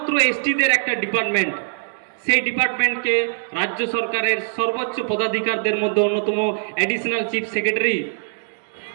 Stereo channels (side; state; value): left; silent; 64 dB below the other